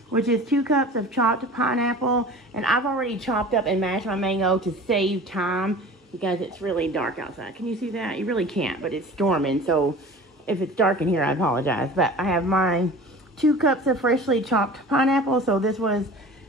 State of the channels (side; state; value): both; normal; correlation 0.40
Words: which is 2 cups of chopped pineapple, and I've already chopped up and mashed my mango to save time, because it's really dark outside. Can you see that? You really can't, but it's storming, so if it's dark in here, I apologize. But I have my 2 cups of freshly chopped pineapple. So this was,